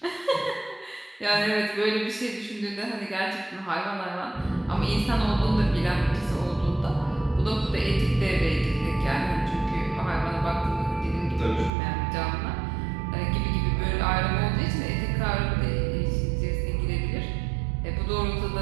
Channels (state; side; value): drops out; left; at 11.7 s